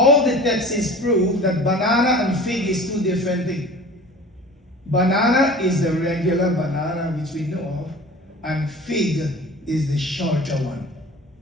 the texts prove that banana and fig is two different things. Banana is the regular banana which we know of, and fig is the shorter one.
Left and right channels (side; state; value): both; normal; correlation 0.41